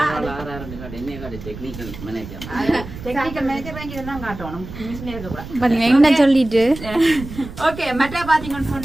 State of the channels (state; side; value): noise; right; rumble, 12 dB below the sound